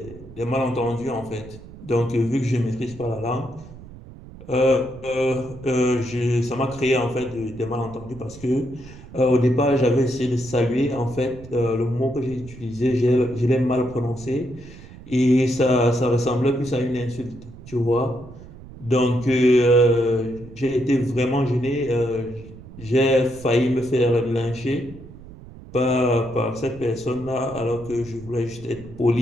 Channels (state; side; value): noise; right; rumble, 17 dB below the sound